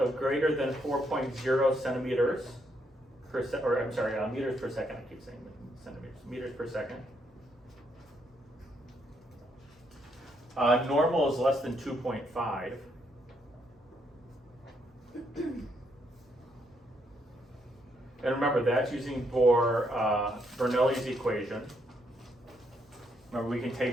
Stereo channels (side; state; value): both; normal; correlation 0.75